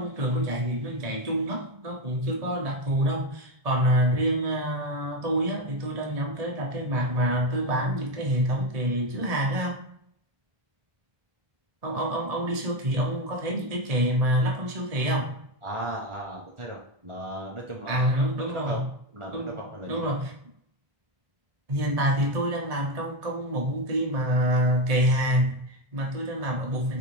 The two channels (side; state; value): left; late; 1.7 ms